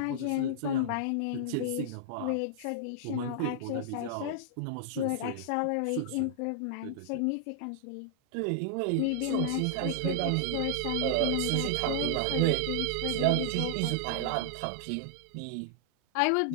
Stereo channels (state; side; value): different; both; correlation -0.01